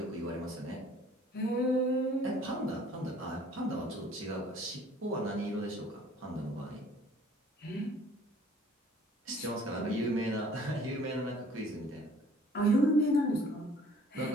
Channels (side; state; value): both; normal; correlation 0.54